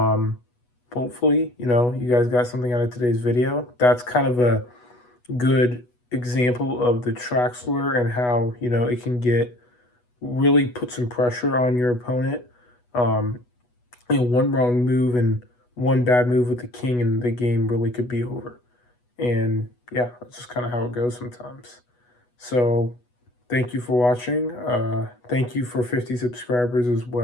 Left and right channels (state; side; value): late; right; 8.2 ms